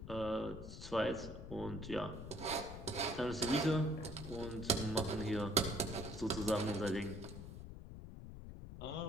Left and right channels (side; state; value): left; noise; rumble, 10 dB below the sound